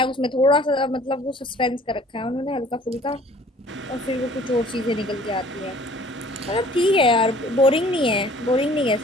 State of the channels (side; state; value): both; normal; correlation 0.52